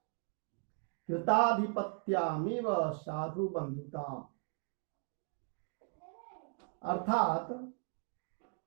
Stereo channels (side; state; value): left; quieter; 39.7 dB